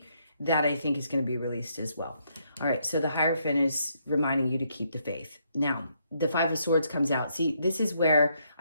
that I think is going to be released as well. All right, so the Hierophant is reminding you to keep the faith. Now, the Five of Swords comes out. See, this is where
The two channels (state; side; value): inverted; both; correlation -0.74